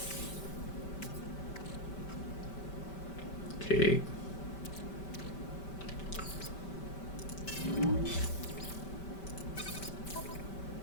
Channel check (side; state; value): right; late; 5.2 ms